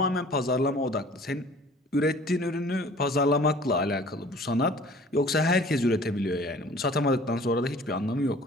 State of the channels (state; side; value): normal; both; correlation 0.49